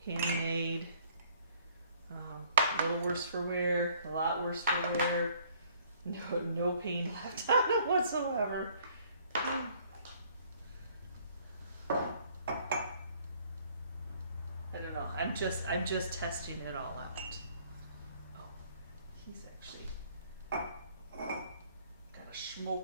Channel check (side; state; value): both; inverted; correlation -0.60